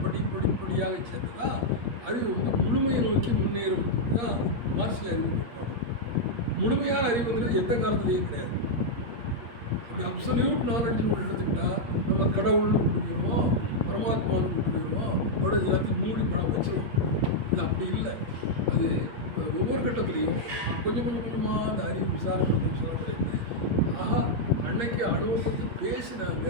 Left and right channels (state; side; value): late; left; 8.5 ms